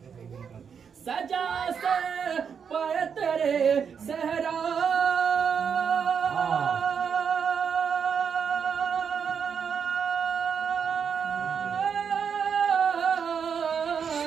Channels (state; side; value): quieter; left; 6.8 dB